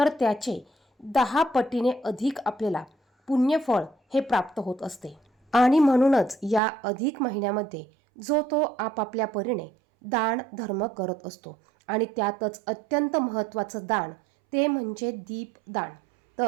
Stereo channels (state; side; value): drops out; left; at 6.6 s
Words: त्याचे 10 पटीने अधिक आपल्याला पुण्यफळ हे प्राप्त होत असते. आणि म्हणूनच या अधिक महिन्यामध्ये जो तो आपापल्या परीने दान धर्म करत असतो आणि त्यातच अत्यंत महत्त्वाचं दान ते म्हणजे दीपदान.